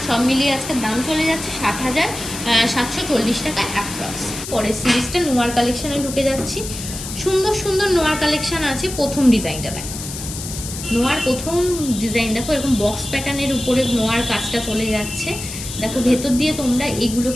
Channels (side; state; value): left; noise; hiss, 9 dB below the sound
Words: সব মিলিয়ে আজকের দাম চলে যাচ্ছে 60,740 টাকা অ্যাপ্রক্স। পরের সিরিজটা নোয়ার কালেকশনে ঢুকে যাচ্ছি। সুন্দর সুন্দর নোয়ার কালেকশন আছে। প্রথম ডিজাইনটা দেখো, নোয়ার প্রথম ডিজাইন দেখো, এরকম বক্স প্যাটার্নের উপরে নোয়ার কাজটা চলে যাচ্ছে। দেখো ভেতর দিয়ে তোমরা এগুলো